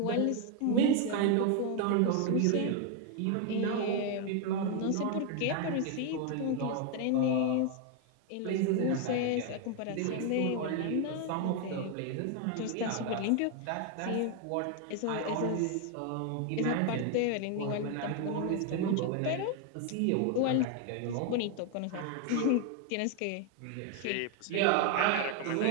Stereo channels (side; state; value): both; different; correlation 0.01